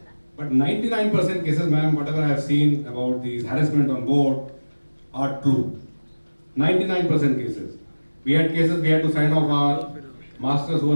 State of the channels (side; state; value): both; inverted; correlation -1.00